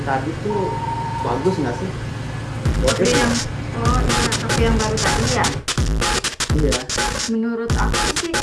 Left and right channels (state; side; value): identical; both; correlation 1.00